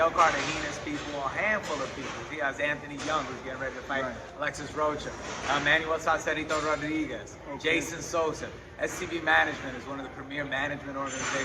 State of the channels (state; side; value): identical; both; correlation 1.00